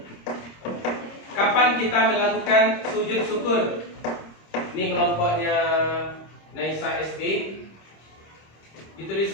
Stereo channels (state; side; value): late; right; 26 ms